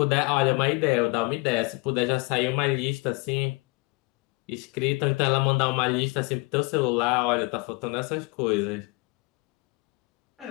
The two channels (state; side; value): quieter; right; 26.8 dB